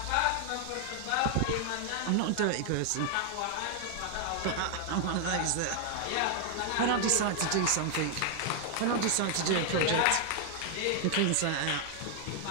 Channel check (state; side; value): different; both; correlation 0.00